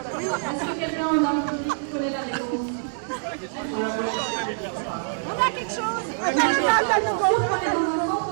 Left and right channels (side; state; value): left; silent; digital silence